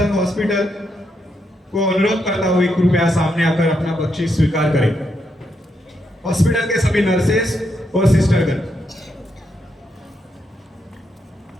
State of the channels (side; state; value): both; normal; correlation 0.80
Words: hospital को अनुरोध करता हूँ कृपया सामने आकर अपना बख्शीश स्वीकार करें। हॉस्पिटल के सभी नर्सेस और सिस्टरगण।